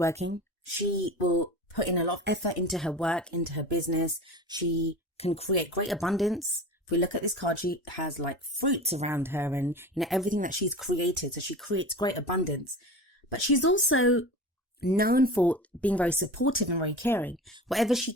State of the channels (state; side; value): normal; both; correlation 0.33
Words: She will put in a lot of effort into her work, into her business. She can create great abundance. If we look at this card, she has like fruits around her and, everything that she's created. So she creates great abundance. But she's also known for being very supportive and very caring. Whatever she